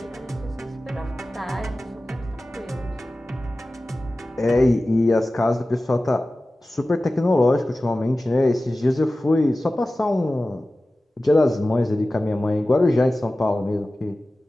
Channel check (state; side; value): normal; both; correlation 0.96